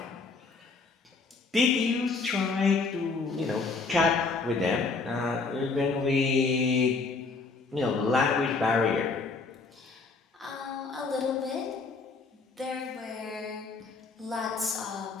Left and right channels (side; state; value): right; quieter; 4.2 dB